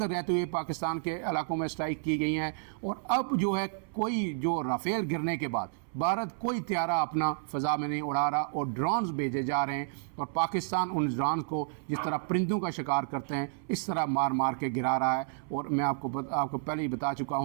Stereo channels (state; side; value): silent; left; 57 dB below the other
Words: رہتے ہوئے پاکستان کے علاقوں میں سٹرائک کی گئی ہیں، اور اب جو ہے کوئی جو رافیل گرنے کے بعد بھارت کوئی طیارہ اپنا فضا میں نہیں اڑا رہا اور ڈرونز بھیجے جا رہے ہیں، اور پاکستان ان ڈرونز کو جس طرح پرندوں کا شکار کرتے ہیں اس طرح مار مار کے گرا رہا ہے۔ اور میں آپ کو پہلے ہی بتا چکا